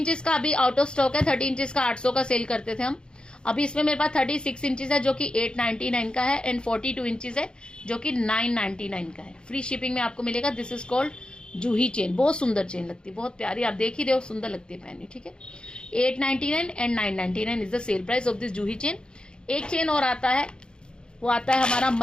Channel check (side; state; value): right; late; 0.050 ms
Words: का अभी आउट ऑफ स्टॉक है, 30 इंचेस का 800 का सेल करते थे हम। अभी इसमें मेरे पास 36 इंचेस है जो कि 899 का है, एंड 42 इंचेस है जो कि 999 का है। फ्री शिपिंग में आपको मिलेगा। This is called Juhi chain, बहुत सुंदर चेन लगती है, बहुत प्यारी, आप देख ही रहे हो, सुंदर लगती है पहननी, ठीक है। 899 and 999 is the sale price of this Juhi chain. एक चेन और आता है, वो आता है हमारा